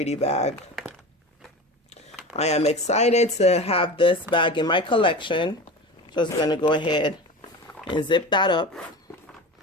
bag. I am excited to have this bag in my collection. Just gonna go ahead and zip that up.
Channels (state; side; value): normal; both; correlation 0.30